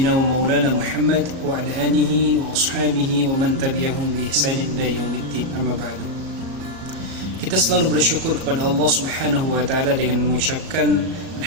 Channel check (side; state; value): left; late; 37 ms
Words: wa maulana Muhammad wa ala alihi wa ashabihi wa man tabi'ahum bi ihsanin ila yaumiddin. Amma ba'du. Kita selalu bersyukur kepada Allah Subhanahu wa taala dengan mengucapkan